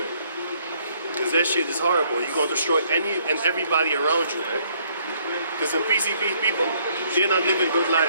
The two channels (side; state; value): both; inverted; correlation -0.66